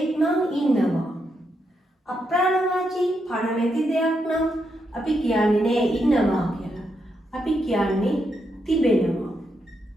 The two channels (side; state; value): both; normal; correlation 0.81